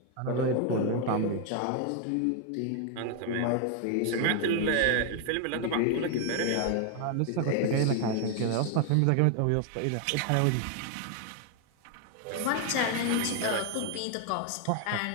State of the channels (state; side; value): different; both; correlation 0.00